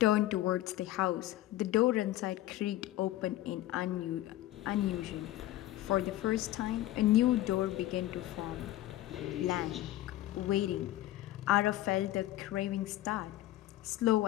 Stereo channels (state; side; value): quieter; right; 15.1 dB